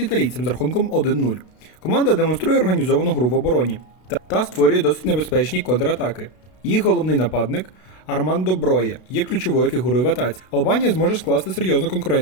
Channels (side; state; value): right; late; 32 ms